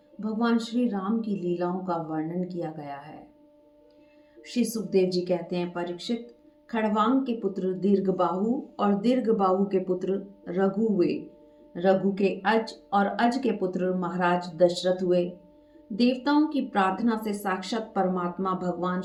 भगवान श्री राम की लीलाओं का वर्णन किया गया है। श्री सुखदेव जी कहते हैं, परीक्षित, खड़वांग के पुत्र दीर्घबाहु और दीर्घबाहु के पुत्र रघु हुए। रघु के अज और अज के पुत्र महाराज दशरथ हुए। देवताओं की प्रार्थना से साक्षात परमात्मा भगवान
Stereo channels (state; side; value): identical; both; correlation 1.00